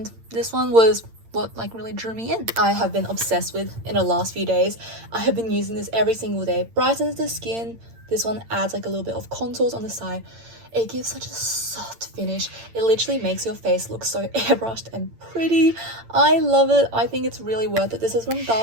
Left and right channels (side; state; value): left; late; 8.8 ms